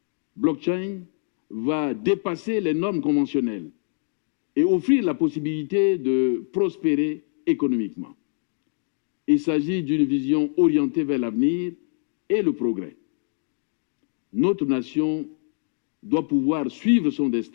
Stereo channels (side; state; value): right; silent; digital silence